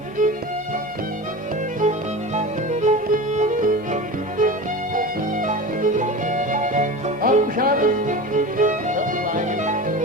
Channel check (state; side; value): normal; both; correlation 0.30